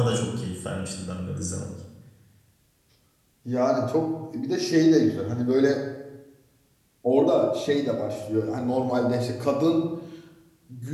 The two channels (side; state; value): both; identical; correlation 1.00